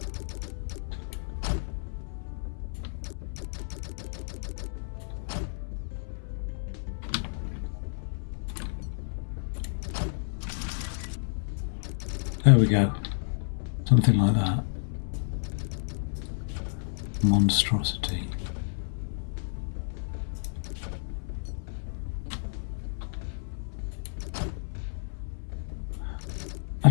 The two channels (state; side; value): silent; right; 57 dB below the other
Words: There we go. Something like that. Monstrosity.